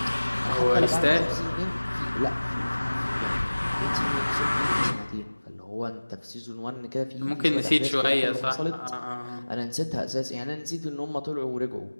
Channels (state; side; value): inverted; both; correlation -1.00